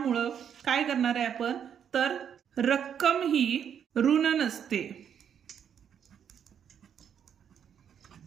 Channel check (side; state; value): left; quieter; 8.4 dB